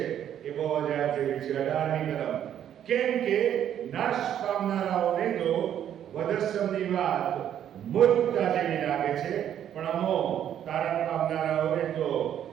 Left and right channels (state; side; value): quieter; left; 10.1 dB